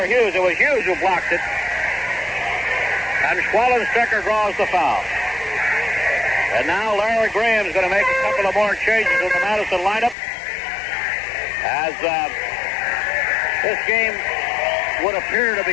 Hughes. It was Hughes who blocked it. And Swallenstecker draws the foul. And now Larry Graham is going to make a couple of more changes in the Madison lineup. As this game would appear to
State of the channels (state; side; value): drops out; right; at 10.2 s